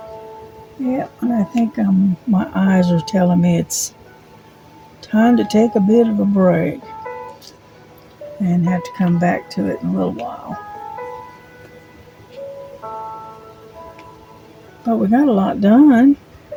Yeah, and I think my eyes are telling me it's time to take a bit of a break and have to come back to it in a little while. But we got a lot done.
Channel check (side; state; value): both; identical; correlation 1.00